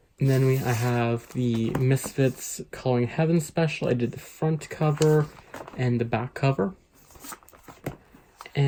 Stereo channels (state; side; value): identical; both; correlation 1.00